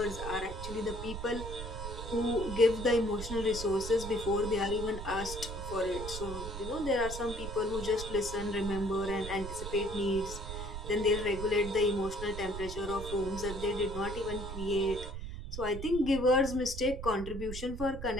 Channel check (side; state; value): right; noise; rumble, 8 dB below the sound